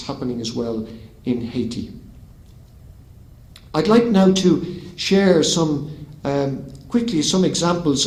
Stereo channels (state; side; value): identical; both; correlation 1.00